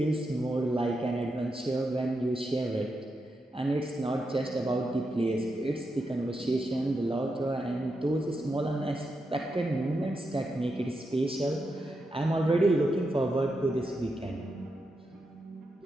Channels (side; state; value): both; normal; correlation 0.86